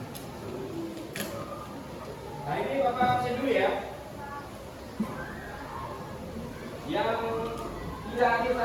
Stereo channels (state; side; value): identical; both; correlation 1.00